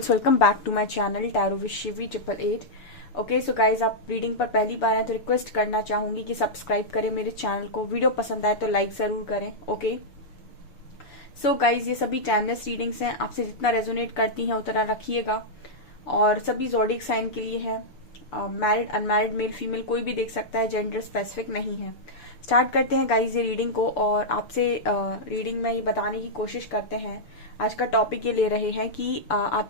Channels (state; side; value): late; right; 6.8 ms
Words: welcome back to my channel tarot with Shivi 888। Okay so guys, आप रीडिंग पर पहली बार आए तो रिक्वेस्ट करना चाहूंगी कि सब्सक्राइब करें मेरे चैनल को। वीडियो पसंद आए तो लाइक जरूर करें। ओके सो गाइज, ये सभी टाइमलेस रीडिंग्स हैं, आपसे जितना रेजोनेट करती हैं उतना रखिएगा। और सभी जोडिक साइन के लिए है। मैरिड अनमैरिड मेल फीमेल कोई भी देख सकता है, जेंडर स्पेसिफिक नहीं है। स्टार्ट करते हैं गाइज ये रीडिंग को, और आपसे रीडिंग में ये बताने की कोशिश करते हैं। आज का टॉपिक ये ले रहे हैं कि